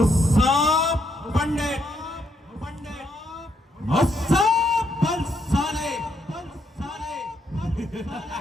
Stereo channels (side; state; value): both; normal; correlation 0.76